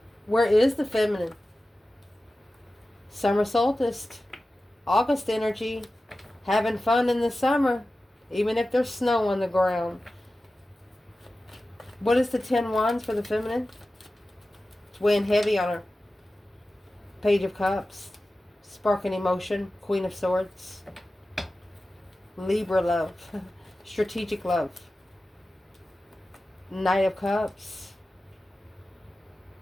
Where is the feminine? Summer solstice, August energy, having fun in the summer, even if there's snow on the ground. What is the 10 wands for the feminine? It's weighing heavy on her. Page of Cups, sparking emotion, Queen of Swords, Libra love, strategic love, Knight of Cups,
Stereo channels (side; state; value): both; normal; correlation 0.95